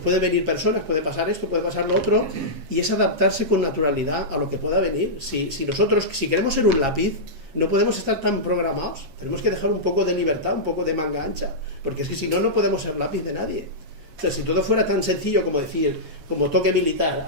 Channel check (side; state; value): left; late; 7.3 ms